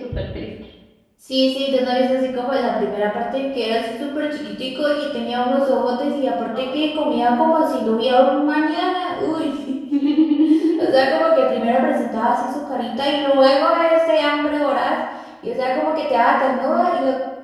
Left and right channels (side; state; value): both; identical; correlation 1.00